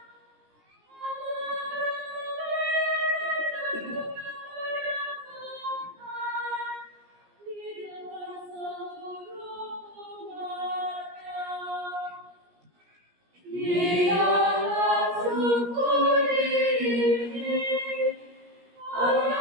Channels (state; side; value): late; left; 17 ms